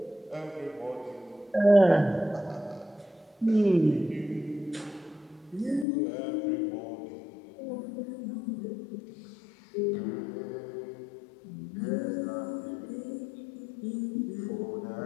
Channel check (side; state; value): right; drops out; at 5.9 s